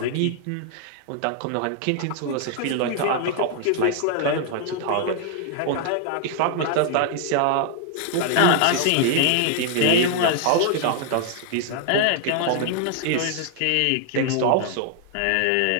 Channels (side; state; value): both; different; correlation 0.00